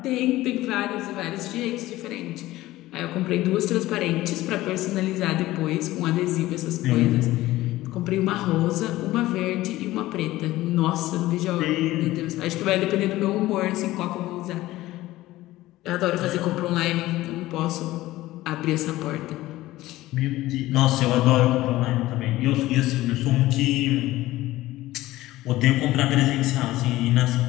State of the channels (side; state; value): right; quieter; 16.8 dB